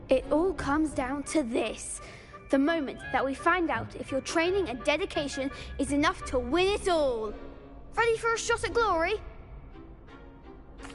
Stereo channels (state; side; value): identical; both; correlation 1.00